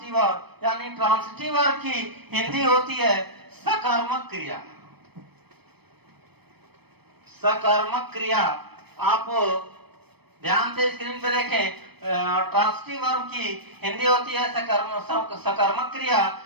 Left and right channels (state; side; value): late; left; 0.97 ms